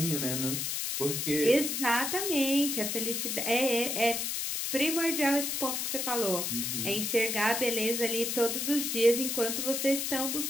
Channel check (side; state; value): left; noise; hiss, 1 dB below the sound